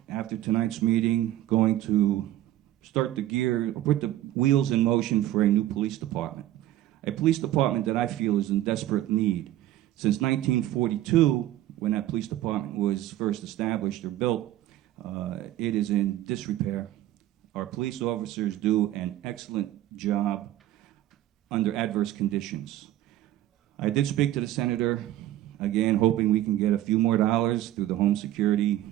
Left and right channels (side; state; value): left; quieter; 13.9 dB